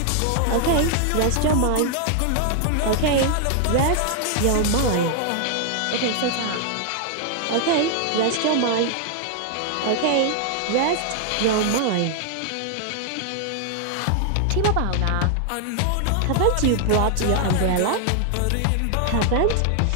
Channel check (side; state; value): both; different; correlation 0.00